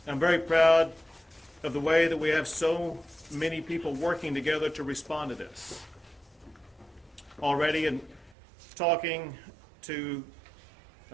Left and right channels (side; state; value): left; drops out; at 8.3 s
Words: I'm very proud of the way that we have so many people working together to respond to this. Already, in talking to